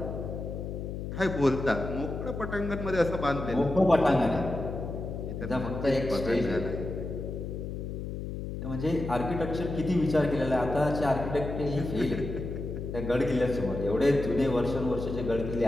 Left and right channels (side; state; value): left; noise; hum, 6 dB below the sound